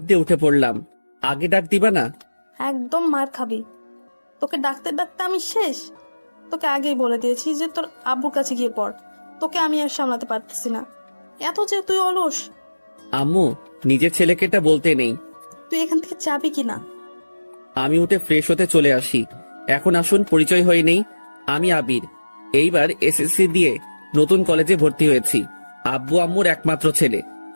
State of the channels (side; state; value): both; inverted; correlation -1.00